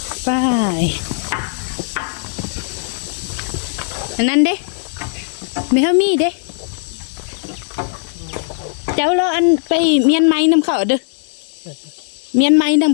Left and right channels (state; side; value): silent; right; digital silence